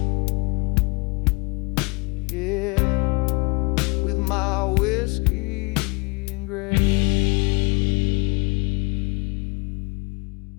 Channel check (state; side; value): quieter; right; 26.7 dB